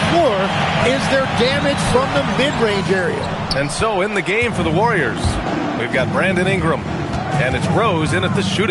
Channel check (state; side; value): identical; both; correlation 1.00